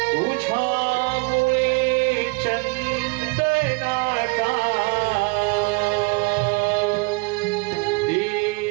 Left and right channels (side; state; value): left; quieter; 28.7 dB